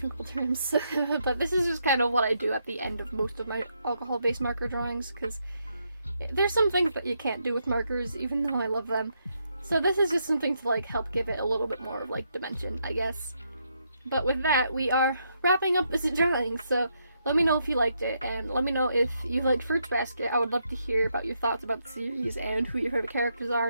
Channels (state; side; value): inverted; both; correlation -0.78